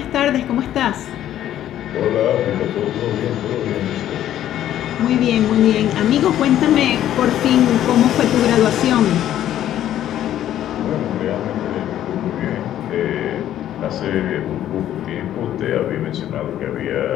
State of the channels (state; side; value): quieter; right; 11.8 dB